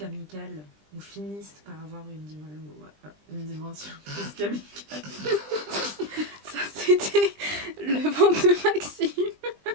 ou finissent par avoir une dimension plus qu'amicale. Ça, c'était le ventre de Maxime.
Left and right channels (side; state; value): left; late; 20 ms